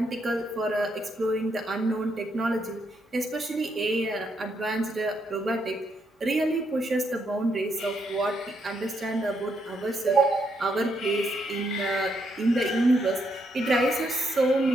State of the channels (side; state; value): both; normal; correlation 0.77